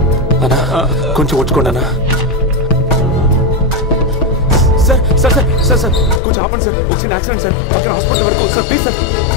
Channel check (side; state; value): right; drops out; at 6.2 s